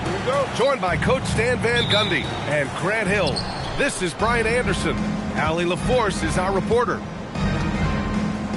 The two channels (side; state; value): both; identical; correlation 1.00